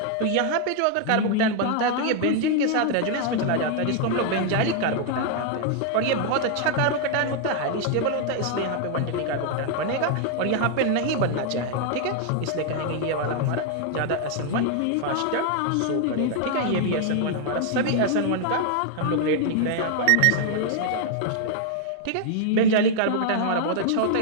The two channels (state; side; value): different; both; correlation 0.00